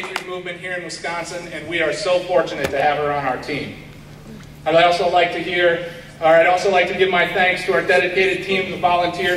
movement here in Wisconsin, and we are so fortunate to have her on our team. I'd also like to give my thanks to our dedicated team of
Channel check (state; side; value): identical; both; correlation 1.00